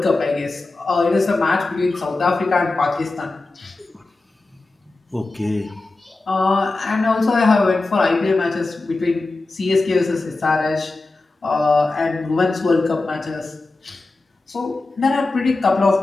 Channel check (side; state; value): right; quieter; 3.3 dB